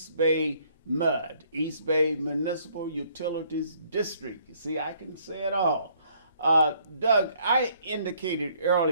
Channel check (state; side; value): inverted; both; correlation -0.64